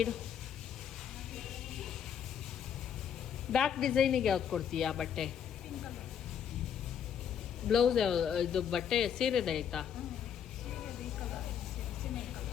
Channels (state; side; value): quieter; right; 8.5 dB